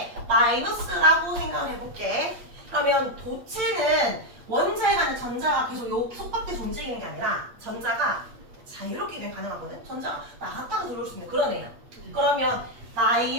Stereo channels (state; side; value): late; left; 8.6 ms